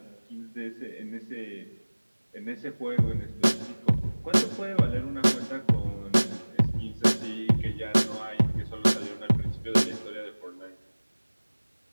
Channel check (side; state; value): both; inverted; correlation -1.00